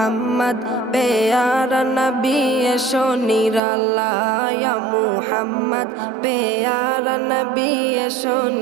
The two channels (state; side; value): drops out; left; at 3.6 s